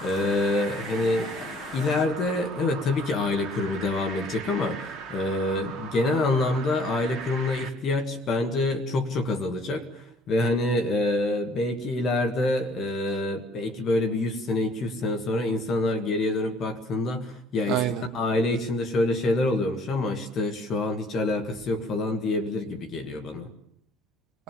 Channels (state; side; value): normal; both; correlation 0.57